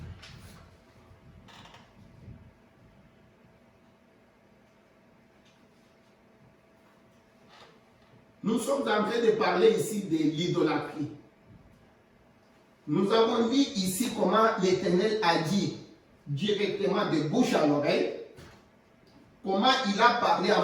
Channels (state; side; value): identical; both; correlation 1.00